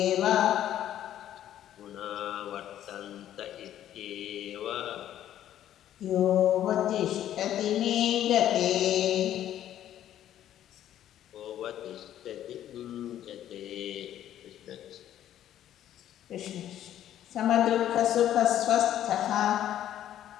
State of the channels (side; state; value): right; quieter; 11.6 dB